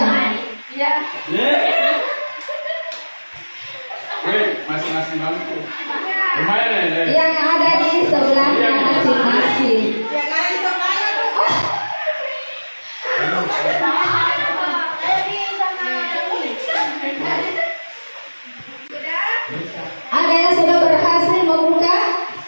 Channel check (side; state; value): both; inverted; correlation -1.00